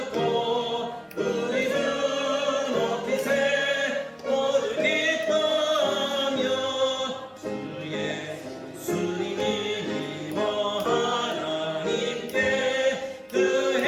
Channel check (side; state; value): both; identical; correlation 1.00